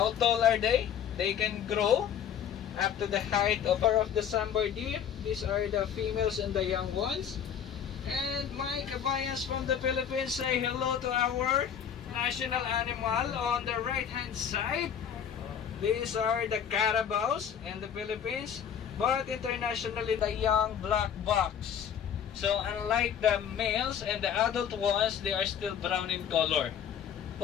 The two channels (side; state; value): right; quieter; 8.5 dB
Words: tall are they? They can grow up to the height of the sambar deer. These are the females and the young ones. And my kabayans from the Philippines, say hello to our national animal on the right hand side. These are the carabaos in the Philippines, but internationally the young black box. So unlike the males and the adult ones, they are still brown in color.